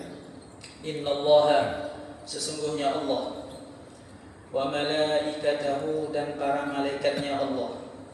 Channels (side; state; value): both; identical; correlation 1.00